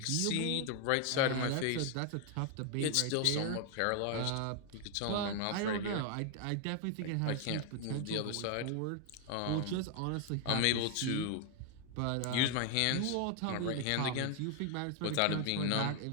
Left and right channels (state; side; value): different; both; correlation 0.00